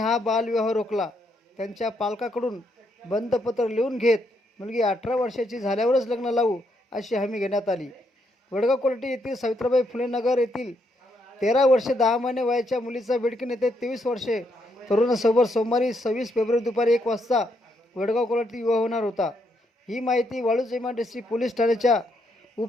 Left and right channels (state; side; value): normal; both; correlation 0.76